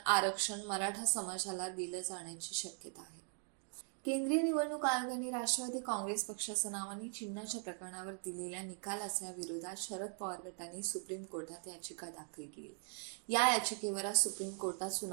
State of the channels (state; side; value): silent; left; 51 dB below the other